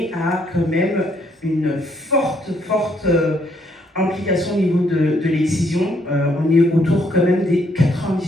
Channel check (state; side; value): normal; both; correlation 0.70